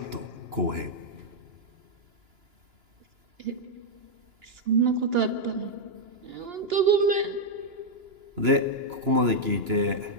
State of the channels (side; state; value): left; late; 2.9 ms